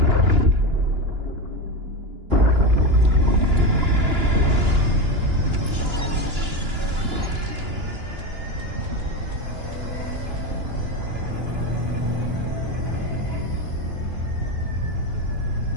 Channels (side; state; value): left; late; 2.9 ms